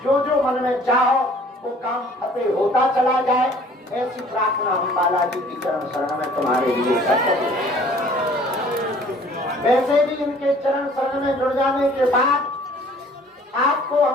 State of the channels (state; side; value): normal; both; correlation 0.53